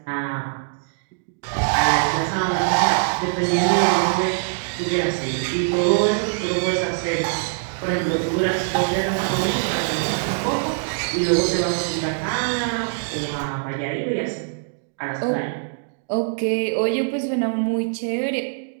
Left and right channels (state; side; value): silent; left; digital silence